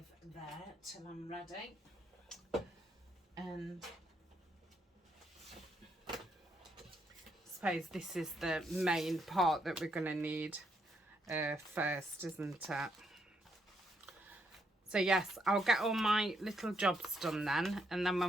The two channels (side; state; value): both; normal; correlation 0.76